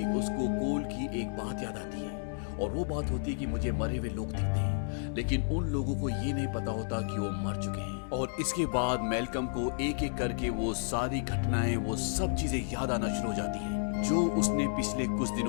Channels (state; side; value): silent; right; digital silence